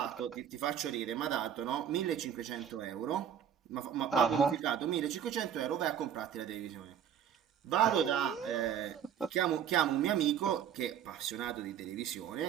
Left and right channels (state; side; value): quieter; left; 9.0 dB